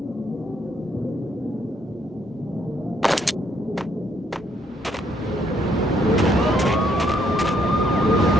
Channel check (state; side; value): normal; both; correlation 0.71